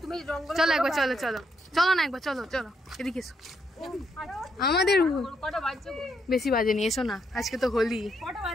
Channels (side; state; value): both; normal; correlation 0.76